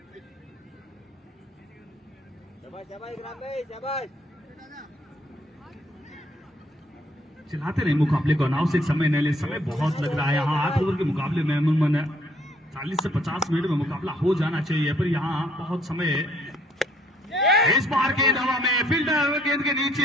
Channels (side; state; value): both; normal; correlation 0.64